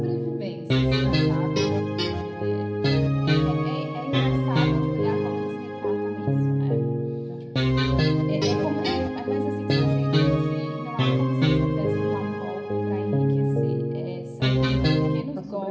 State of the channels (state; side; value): identical; both; correlation 1.00